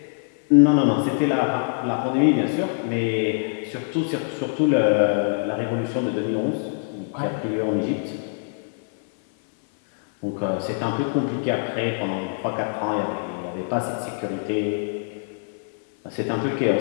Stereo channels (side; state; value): right; silent; 60 dB below the other